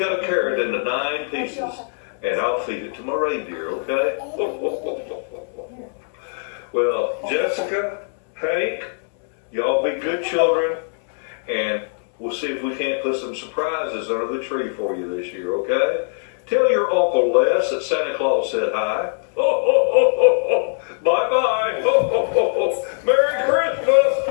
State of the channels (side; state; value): right; silent; digital silence